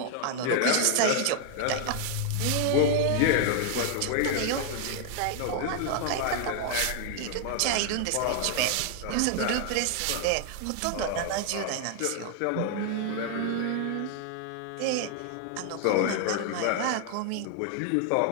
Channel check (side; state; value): both; different; correlation 0.00